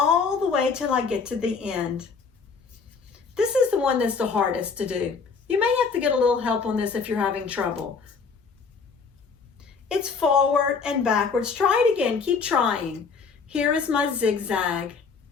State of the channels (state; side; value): quieter; right; 5.2 dB